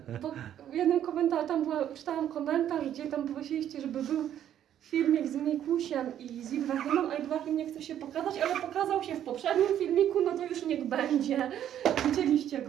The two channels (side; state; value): left; quieter; 10.6 dB